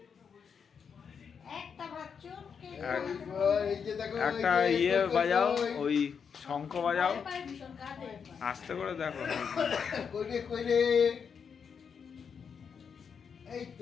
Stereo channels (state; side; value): quieter; right; 6.6 dB